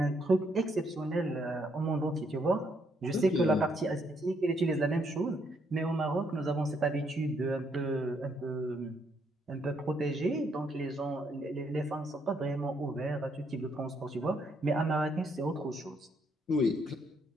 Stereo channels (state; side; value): normal; both; correlation 0.72